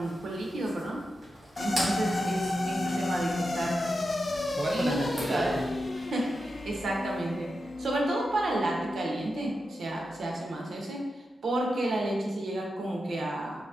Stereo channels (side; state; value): both; normal; correlation 0.89